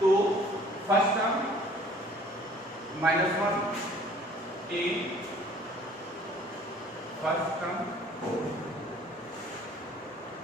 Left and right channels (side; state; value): both; normal; correlation 0.54